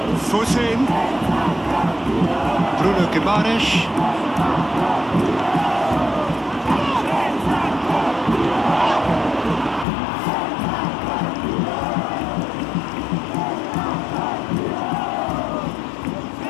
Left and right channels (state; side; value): drops out; right; at 9.9 s